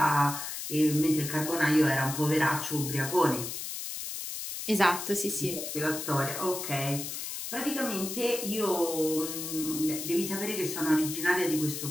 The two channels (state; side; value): noise; left; hiss, 6 dB below the sound